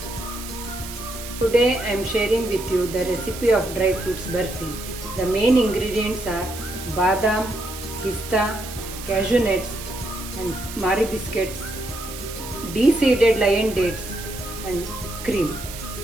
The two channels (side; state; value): right; noise; hiss, 11 dB below the sound